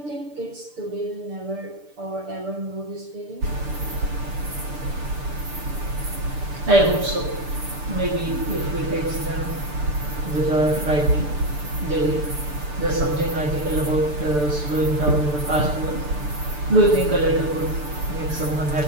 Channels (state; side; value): late; left; 6.8 ms